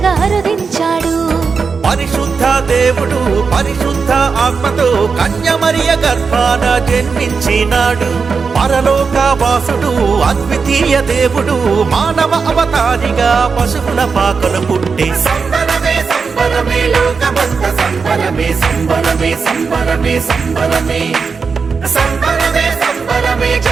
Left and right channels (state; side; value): quieter; left; 5.2 dB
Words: అరుదించాడు. పరిశుద్ధ దేవుడు పరిశుద్ధ ఆత్మతో కన్యమరియ గర్భాన జన్మించినాడు. పరలోక వాసుడు అద్వితీయ దేవుడు మానవ అవతారిగా పశువుల పాకలు పుట్టి సంబరమే సంబరమే లోకమంత సంబరమే సంబరమే సంబరమే సంబరమే సంబరమే సంబరమే